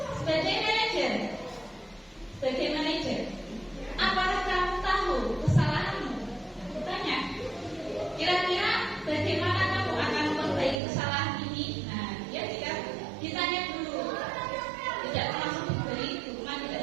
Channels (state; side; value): drops out; left; at 10.8 s